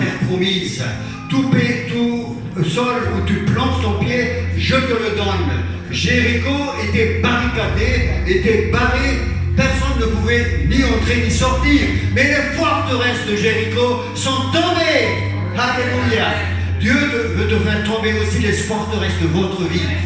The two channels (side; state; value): both; identical; correlation 1.00